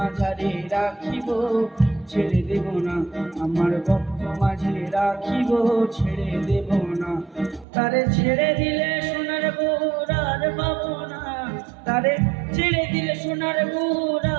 রাখিব ছেড়ে দেব না, আমার বক্ষ মাঝে রাখিব ছেড়ে দেব না। তারে ছেড়ে দিলে সোনার গৌর আর পাবো না, তারে ছেড়ে দিলে সোনার গৌর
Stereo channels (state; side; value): drops out; left; at 7.7 s